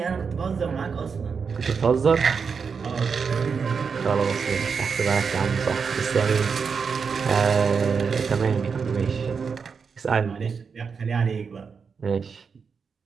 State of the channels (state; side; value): quieter; left; 5.7 dB